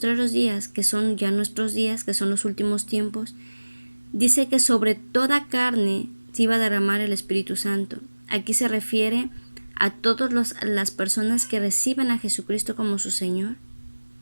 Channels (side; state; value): both; inverted; correlation -1.00